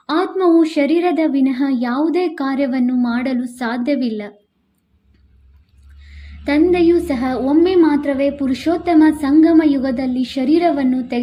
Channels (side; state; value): both; identical; correlation 1.00